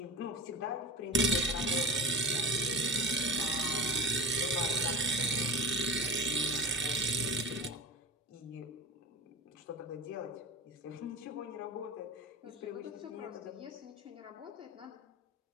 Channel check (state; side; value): normal; both; correlation 0.31